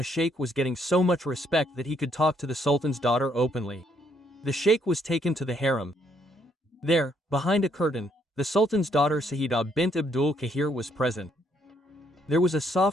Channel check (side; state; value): both; normal; correlation 0.70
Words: sheikh was getting so much respect that he could talk to the sultan's daughter openly. The sheikh was taken to the harem. There, behind a curtain, the sultan's daughter Sayyida bint Abdul Kahir was present. There was a